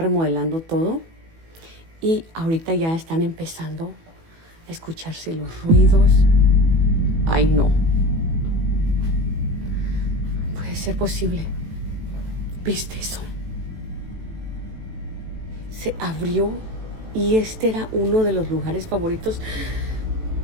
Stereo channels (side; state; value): left; late; 18 ms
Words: todo y ahorita ya están empezando a escucharse los ruidos. Ay, no. Puede ser posible. ¿Viste eso? Se abrió y este era uno de los lugares favoritos.